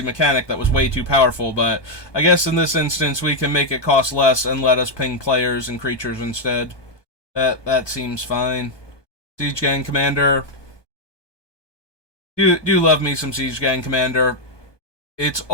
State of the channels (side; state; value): right; late; 1.2 ms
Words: mechanic that was way too powerful, but I guess in this instance we can make it cost less and let us ping players and creatures instead. That seems fine. Siege Gang Commander. Do love me some Siege Gang Commander. It's